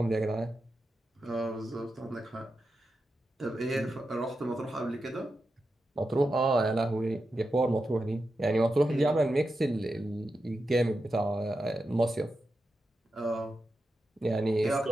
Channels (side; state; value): both; normal; correlation 0.89